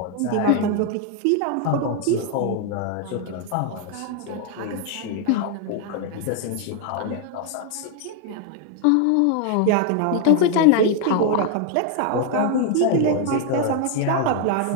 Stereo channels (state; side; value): different; both; correlation 0.00